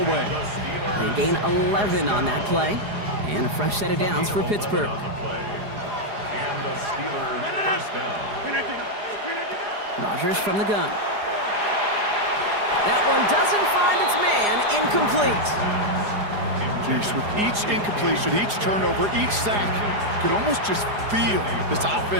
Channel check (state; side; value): late; left; 4.9 ms